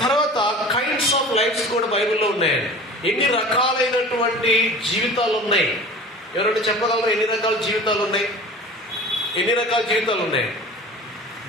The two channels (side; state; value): both; normal; correlation 0.40